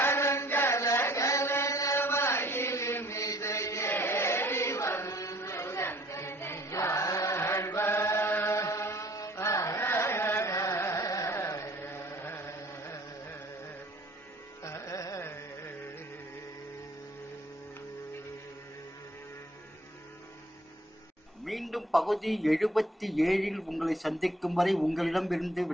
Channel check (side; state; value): both; normal; correlation 0.55